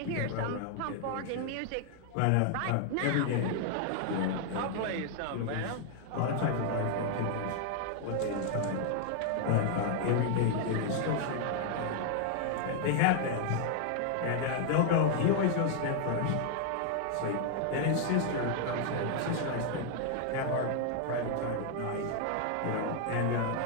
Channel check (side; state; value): both; different; correlation 0.00